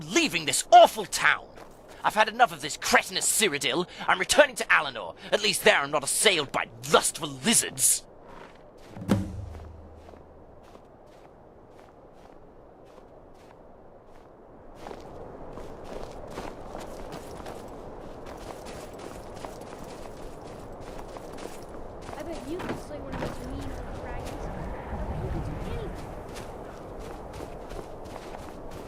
leaving this awful town! I've had enough of this cretinous Cyrodill. I'm returning to Alinor. At least there I'm not assailed by lustful lizards. I bet you could slay one of those mean little dragons. I bet you could do anything.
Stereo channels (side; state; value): both; identical; correlation 1.00